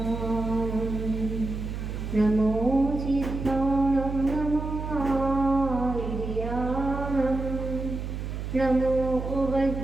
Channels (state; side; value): noise; right; hum, 5 dB below the sound